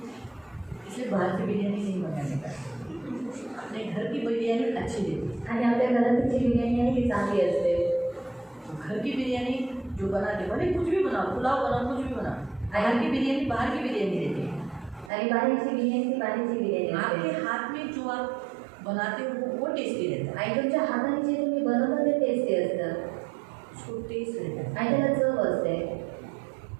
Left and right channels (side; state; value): left; drops out; at 15.1 s